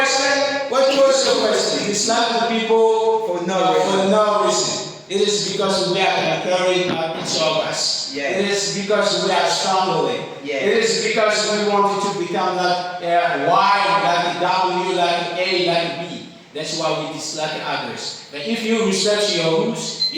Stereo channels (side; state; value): both; identical; correlation 1.00